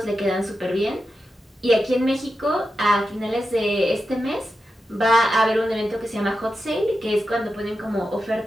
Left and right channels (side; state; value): both; normal; correlation 0.90